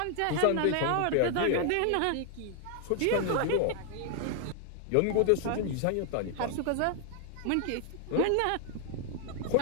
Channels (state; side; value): different; both; correlation 0.00